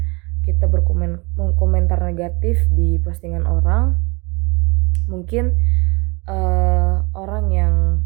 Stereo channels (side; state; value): left; quieter; 27.9 dB